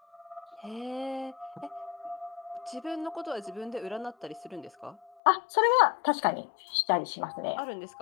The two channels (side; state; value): right; drops out; at 5.1 s